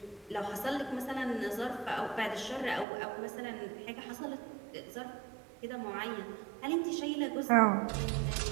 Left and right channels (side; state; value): left; drops out; at 2.9 s